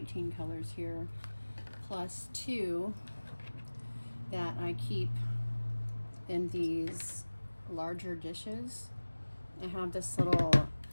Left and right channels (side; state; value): both; inverted; correlation -1.00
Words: colors here, plus 2 that I keep in these larger dishes. I have this little